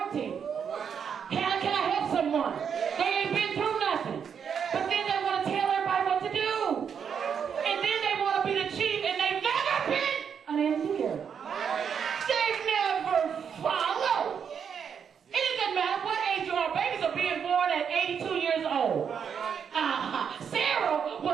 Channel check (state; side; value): quieter; left; 7.3 dB